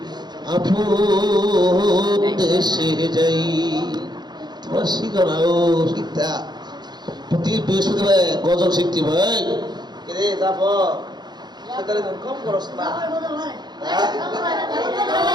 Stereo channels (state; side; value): late; left; 0.21 ms